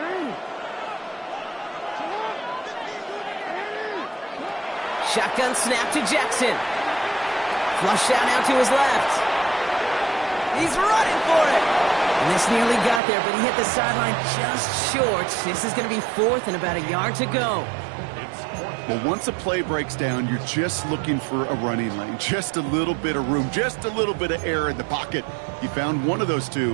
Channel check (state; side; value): drops out; left; at 13.0 s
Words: Shotgun snap to Jackson. Flush out now to his left. He's running for it. And this nearly got there, but he hit the sideline just short. This is going to be 4th and about a yard to go. Well, once a play breaks down, you're just looking for a running lane. Just a little bit of room, just a little bit of air in the pocket. He found one of those